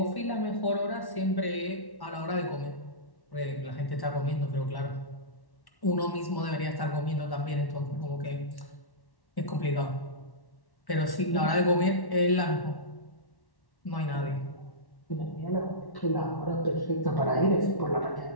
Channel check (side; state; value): right; late; 1.1 ms